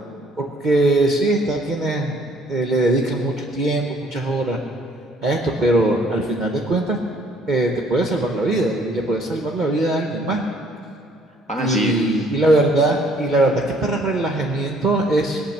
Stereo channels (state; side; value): normal; both; correlation 0.61